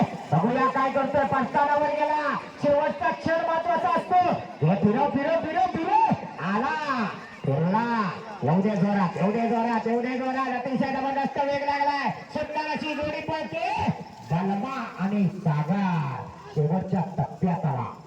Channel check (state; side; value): identical; both; correlation 1.00